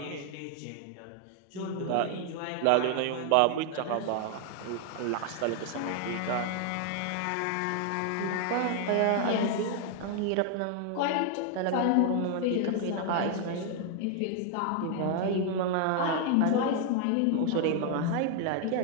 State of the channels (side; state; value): both; different; correlation 0.00